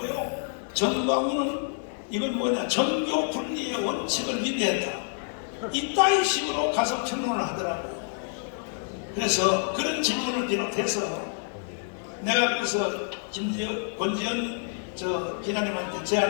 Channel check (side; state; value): right; silent; 60 dB below the other